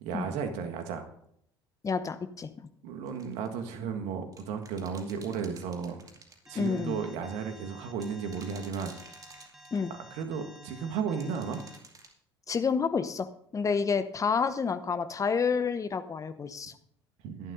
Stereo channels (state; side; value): normal; both; correlation 0.56